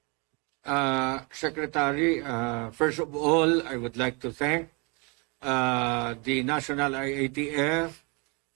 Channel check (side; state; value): left; quieter; 31.5 dB